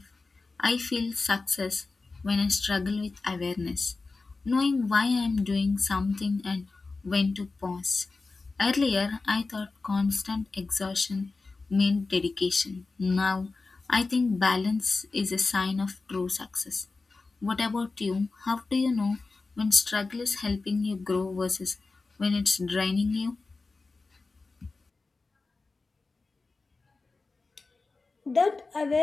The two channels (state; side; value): quieter; right; 3.8 dB